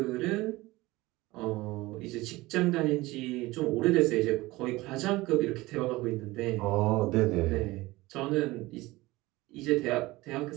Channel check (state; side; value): quieter; left; 19.9 dB